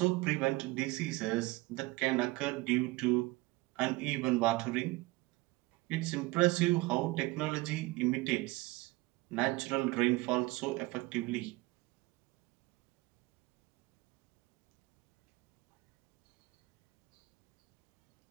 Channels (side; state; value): left; quieter; 21.7 dB